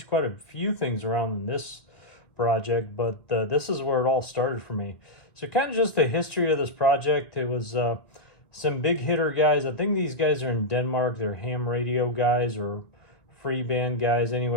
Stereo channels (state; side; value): late; right; 1.9 ms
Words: quite a few things around in this project, but this is where it all started for me. So kind of just the history of this project. It was some big hitter guys. I think these guys are in Denmark. They're ham radio guys or free band guys.